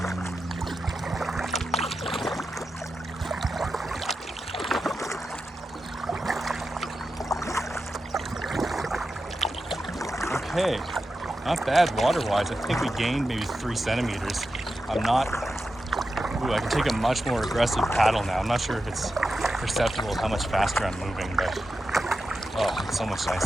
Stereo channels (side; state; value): both; normal; correlation 0.90